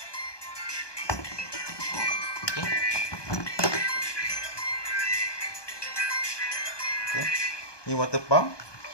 Okey. Okey. Ni water pump.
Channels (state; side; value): late; right; 1.2 ms